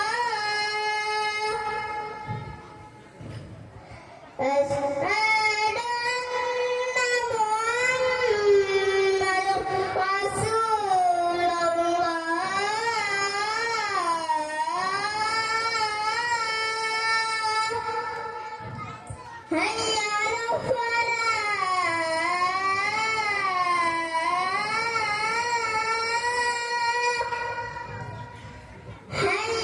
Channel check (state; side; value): identical; both; correlation 1.00